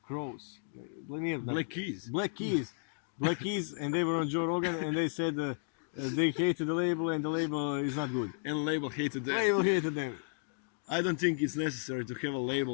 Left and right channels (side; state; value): right; silent; digital silence